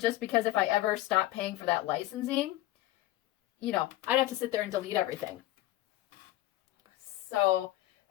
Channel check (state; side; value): quieter; right; 16.2 dB